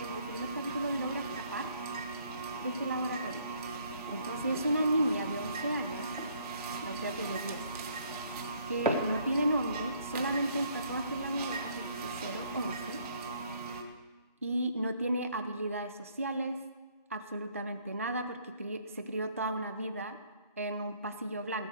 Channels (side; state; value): both; inverted; correlation -0.63